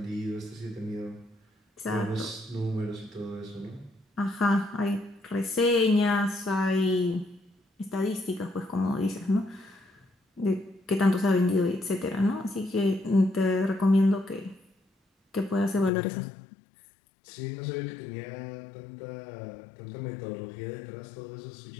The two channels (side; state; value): right; drops out; at 15.9 s